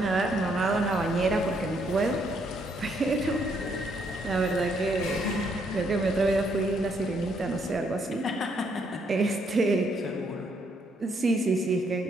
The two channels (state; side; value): normal; both; correlation 0.72